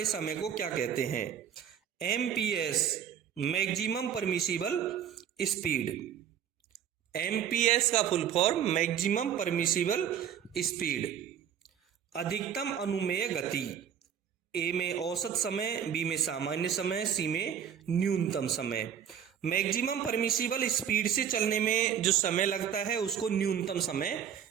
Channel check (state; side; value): quieter; left; 8.8 dB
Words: समय को क्या कहते हैं? MPS, maximum permissible speed. MPS का full form maximum permissible speed. अधिकतम अनुमेय गति। ए में औसत समय, बी में सामान्य समय, सी में न्यूनतम समय। मैक्सिमम परमिसिबल स्पीड से चलने में जो समय लगता है उसको न्यूनतम समय